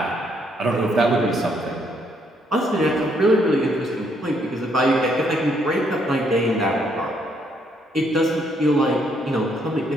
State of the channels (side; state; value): both; normal; correlation 0.71